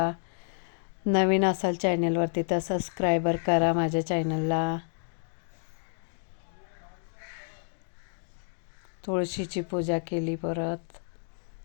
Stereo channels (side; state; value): right; silent; digital silence